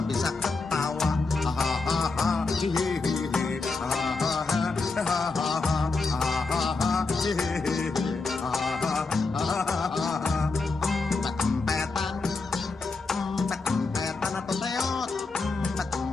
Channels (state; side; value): quieter; right; 3.9 dB